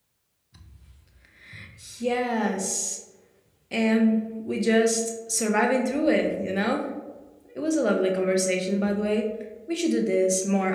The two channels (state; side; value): identical; both; correlation 1.00